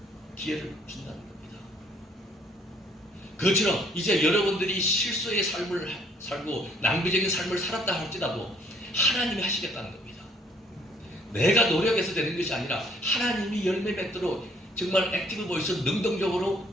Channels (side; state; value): both; normal; correlation 0.62